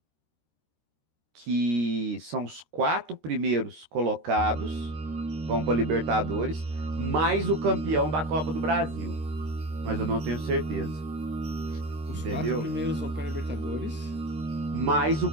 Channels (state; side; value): late; left; 13 ms